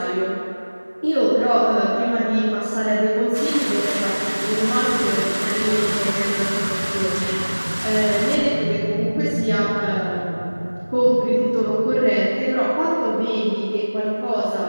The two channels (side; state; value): both; inverted; correlation -1.00